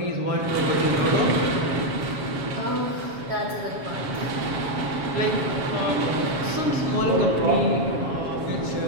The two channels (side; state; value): left; late; 7.3 ms